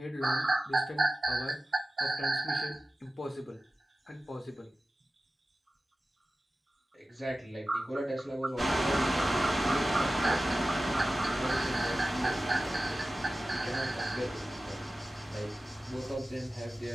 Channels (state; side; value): normal; both; correlation 0.95